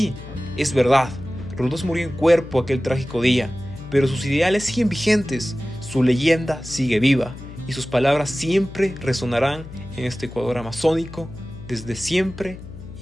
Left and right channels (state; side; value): noise; left; hum, 14 dB below the sound